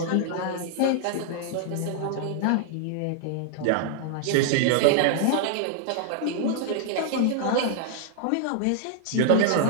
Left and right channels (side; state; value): both; different; correlation -0.01